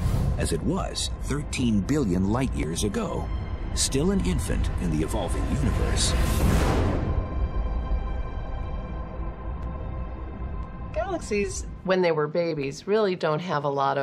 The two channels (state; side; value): identical; both; correlation 1.00